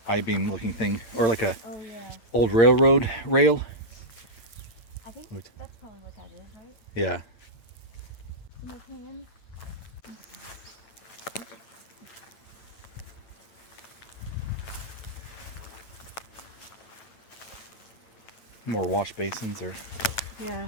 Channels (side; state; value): right; late; 8.8 ms